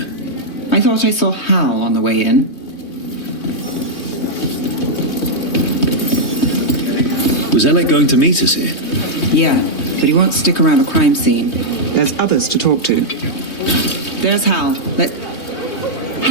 I thought I saw Hal on the way in. Was Alec going to meet us here? Yeah, but he won't stick around a crime scene. There's others to talk to. There's Hal.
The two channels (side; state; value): right; late; 3.2 ms